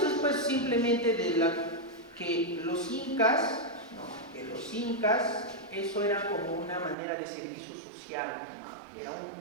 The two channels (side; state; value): left; drops out; at 7.0 s